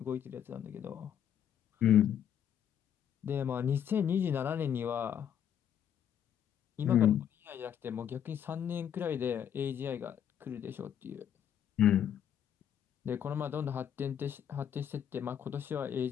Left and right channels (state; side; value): quieter; right; 9.2 dB